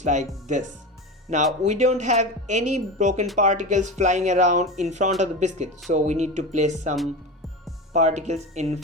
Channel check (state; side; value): normal; both; correlation 0.25